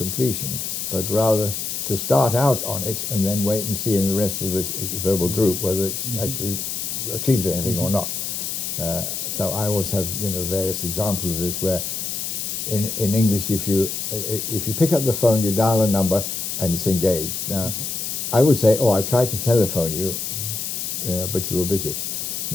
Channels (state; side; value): noise; left; hiss, 3 dB below the sound